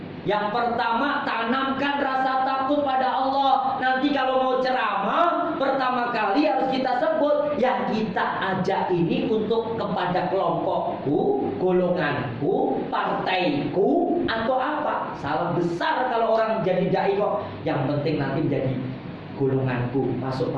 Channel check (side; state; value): both; identical; correlation 1.00